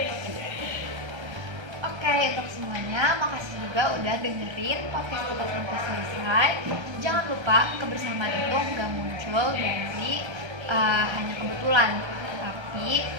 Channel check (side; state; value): left; late; 1.3 ms